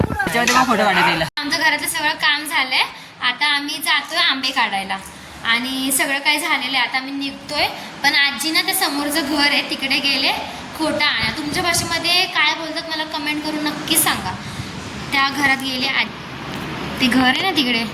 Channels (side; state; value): both; identical; correlation 1.00